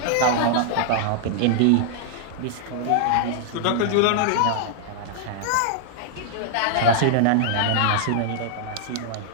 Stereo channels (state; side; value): different; both; correlation -0.01